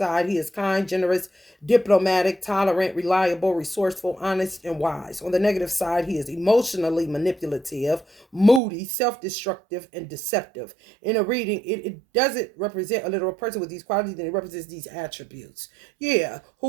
he is kind, generous, diplomatic, tolerant, reliable, resourceful, honest, and wise. On the negative side, he is emotionally manipulative, moody, self destructive, and deceptive. In a reading, it doesn't represent a literal person with these qualities, and it represents these attributes. Yeah,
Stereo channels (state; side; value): drops out; left; at 8.6 s